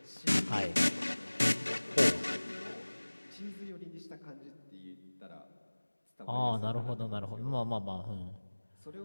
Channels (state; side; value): inverted; both; correlation -1.00